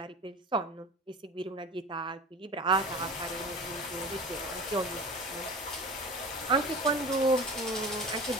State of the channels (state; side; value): normal; both; correlation 0.35